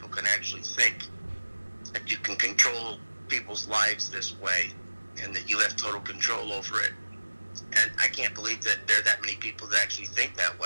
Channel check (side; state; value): both; inverted; correlation -1.00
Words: can actually think that you can control people's lives this way and that you have total control over it. And I can't believe that there are that many people that actually think that